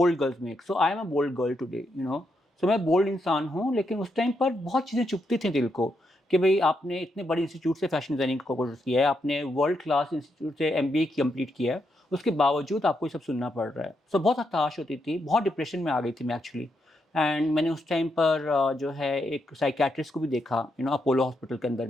girls make, so I am a bold girl today. So मैं बोल्ड इंसान हूँ, लेकिन उस टाइम पर बहुत चीज़ें चुभती थी दिल को कि भई आपने इतने बड़े इंस्टीट्यूट से फैशन डिज़ाइनिंग का कोर्स किया है, आपने वर्ल्ड क्लास इंस्टीट्यूट से एमबीए कंप्लीट किया है, उसके बावजूद आपको ये सब सुनना पड़ रहा है। सो बहुत हताश होती थी, बहुत डिप्रेशन में आ गई थी मैं एक्चुअली, एंड मैंने उस टाइम पर जो है एक साइकियाट्रिस्ट को भी देखा, अपोलो हॉस्पिटल के अंदर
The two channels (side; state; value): both; normal; correlation 0.81